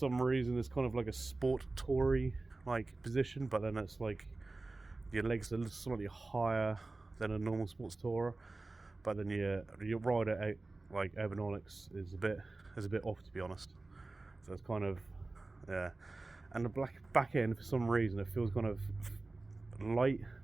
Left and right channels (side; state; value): left; quieter; 3.2 dB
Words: reason, it's kind of like a sport toury like position, but then it's like your legs are slightly higher than a normal sports tourer. But then your rider out like ergonomics is a bit off, to be honest. So it's kind of and the back end, for some reason, it feels kind of light